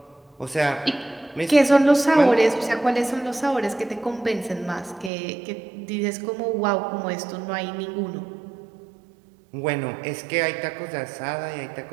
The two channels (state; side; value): drops out; left; at 5.1 s